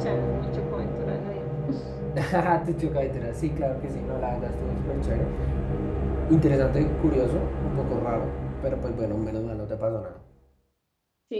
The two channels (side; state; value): both; identical; correlation 1.00